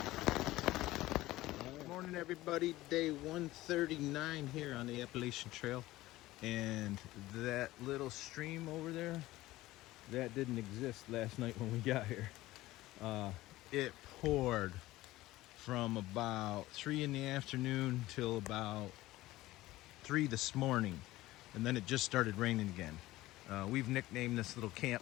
Good morning, everybody. Day 139 here on the Appalachian Trail. And that little stream over there, that didn't exist last night when we got here. It poured from about 3 in the afternoon till about 3 this morning, and then it just started raining again. We've nicknamed this little camp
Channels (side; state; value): right; quieter; 17.3 dB